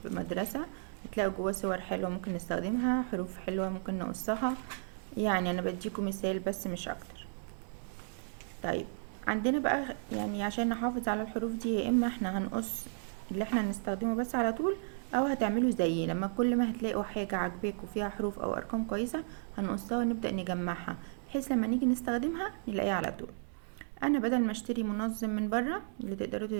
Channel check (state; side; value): silent; left; digital silence